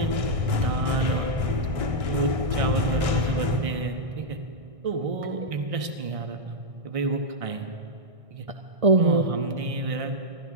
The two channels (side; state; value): left; late; 1.6 ms